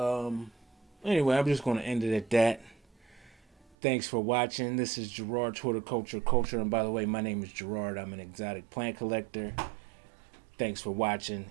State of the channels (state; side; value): drops out; left; at 3.8 s